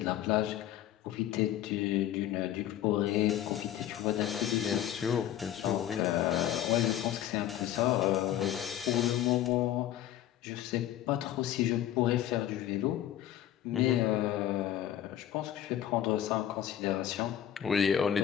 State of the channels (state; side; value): quieter; right; 11.6 dB